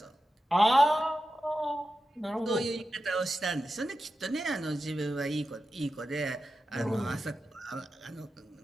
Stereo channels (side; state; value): both; normal; correlation 0.91